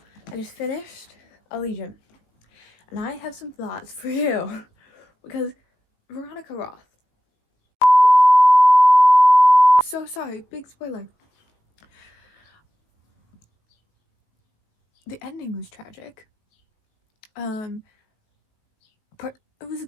I just finished Allegiant, and I have some thoughts for you, because Veronica Roth. So sorry, big spoiler. The ending was tragic. But it was a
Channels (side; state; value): right; late; 18 ms